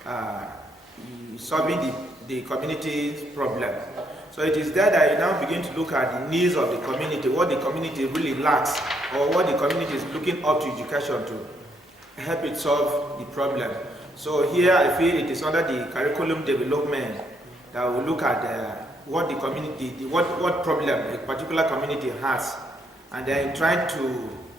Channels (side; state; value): both; normal; correlation 0.73